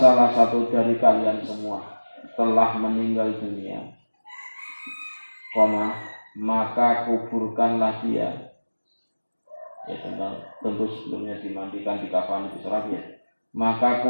telah meninggal dunia, maka kuburkanlah dia. Ya, tentu sebelumnya dimandikan, dikafani, diserap ya. Maka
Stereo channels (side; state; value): both; inverted; correlation -1.00